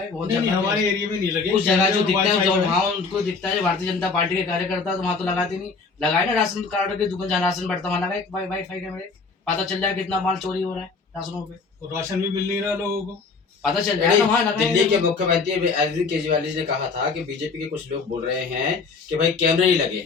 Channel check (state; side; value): quieter; right; 4.6 dB